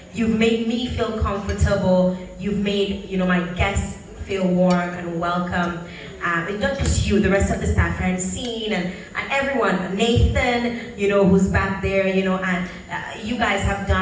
You've made me feel comfortable. You've made, my guests feel warm and welcome. And not just you, the rest of the staff, Francine and everyone, Nathan, who's back there, and you guys have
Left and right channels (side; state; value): both; identical; correlation 1.00